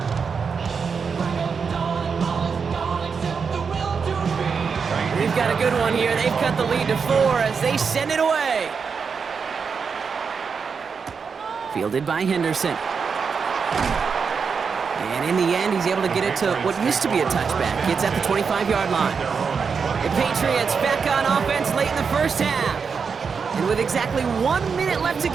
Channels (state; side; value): quieter; left; 5.8 dB